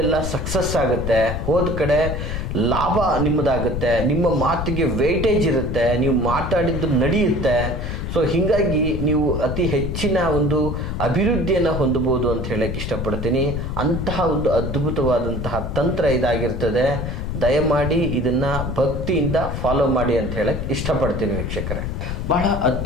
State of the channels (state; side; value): noise; left; rumble, 4 dB below the sound